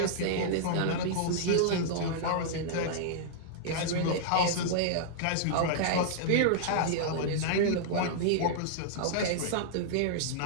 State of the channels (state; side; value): different; both; correlation -0.01